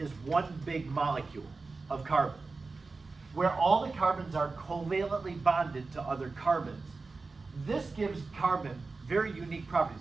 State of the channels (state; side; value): quieter; left; 3.9 dB